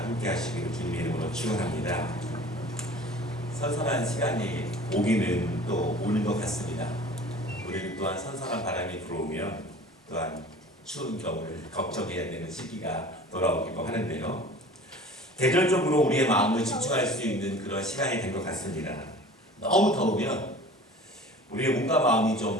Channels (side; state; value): both; normal; correlation 0.43